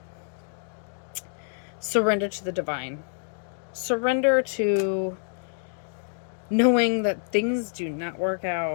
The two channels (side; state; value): right; silent; 59 dB below the other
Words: Surrender to the divine. Surrender to knowing that things do not work